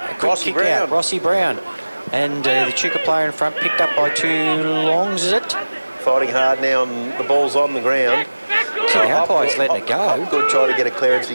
quick Rossi kick Brown. out. Rossi Brown. And the Echuca player in front picked up by two longs, is it? Fighting hard now, and the ball's on the ground. See, the umpire's letting it go. Good try to get a clearance.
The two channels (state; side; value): inverted; both; correlation -1.00